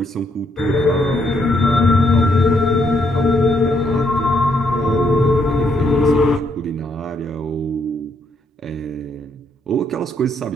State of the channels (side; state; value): both; normal; correlation 0.74